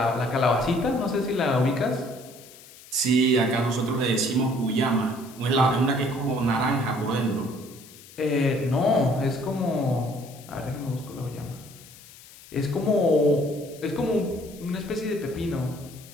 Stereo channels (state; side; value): noise; left; hiss, 20 dB below the sound